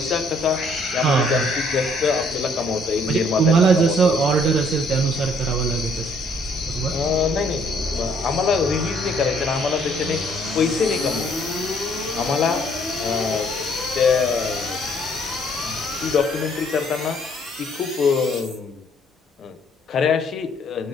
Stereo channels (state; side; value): normal; both; correlation 0.64